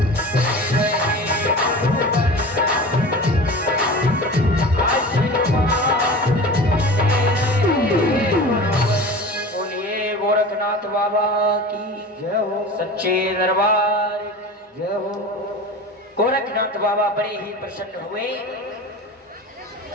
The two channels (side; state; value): both; normal; correlation 0.34